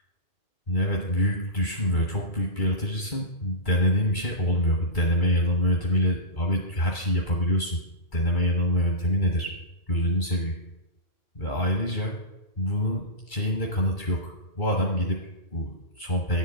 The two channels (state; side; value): late; right; 2.3 ms